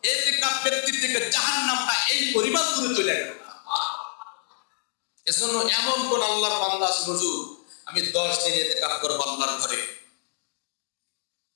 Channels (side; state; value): right; silent; digital silence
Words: ইতিকাফ ব্যক্তির থেকে জাহান্নামটা এই পরিমাণ দূরে চলে গেল। এজন্য এমন কোন আল্লাহর বান্দা আছে হুজুর আমি ১০ দিন ইতিকাফ করব আল্লাহর ঘরে?